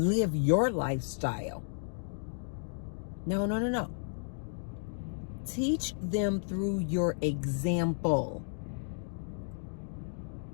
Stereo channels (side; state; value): right; silent; digital silence